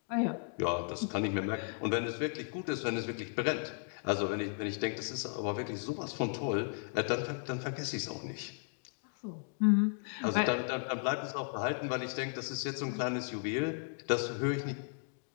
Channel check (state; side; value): silent; right; 54 dB below the other